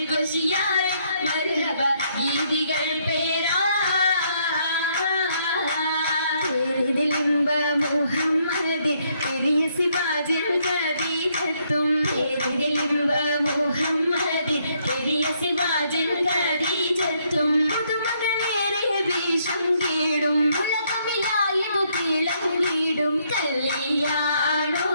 കുശിയായി മർഹബ ഗീതികൾ പേരാ മുഹമ്മദ് പെരിയ സിവാജിൽ ഖദീജത്തും പേരിലിമ്പ മുഹമ്മദ് പെരിയ സിവാജിൽ ഖദീജത്തും പുതുമകളേറെ വീശം കീടും ഉലകമിലായതു തിളങ്ങിടും കല്യാണോ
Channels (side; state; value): both; inverted; correlation -0.71